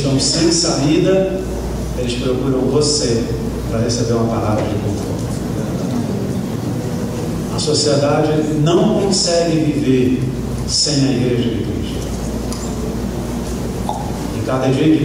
sem saída, eles procuram você para receber uma palavra de conforto. A sociedade não consegue viver sem a igreja de Cristo. E cada dia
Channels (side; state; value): both; identical; correlation 1.00